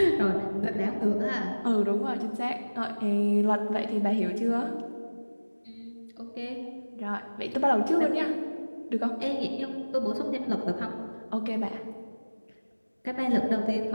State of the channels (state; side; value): inverted; both; correlation -1.00